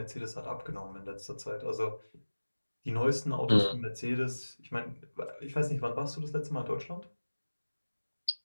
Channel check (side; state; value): both; inverted; correlation -1.00